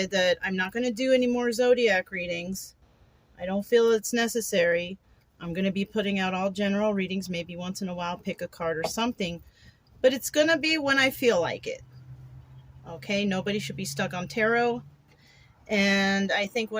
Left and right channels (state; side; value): identical; both; correlation 1.00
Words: that I'm not going to do any more zodiac readings. I don't feel it's necessary. I'm going to be putting out all general readings, maybe once in a while, pick a card or something. But it's going to be when I feel like it. Okay, nobody should be stuck on tarot. And I think